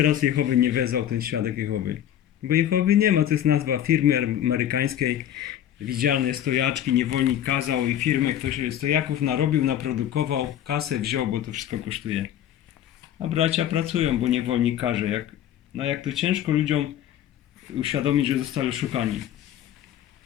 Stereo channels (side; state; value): right; quieter; 10.9 dB